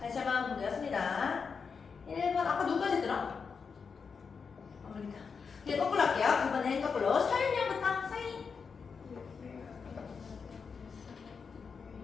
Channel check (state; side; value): quieter; right; 5.6 dB